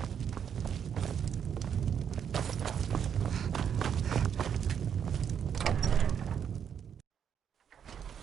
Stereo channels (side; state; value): left; quieter; 8.1 dB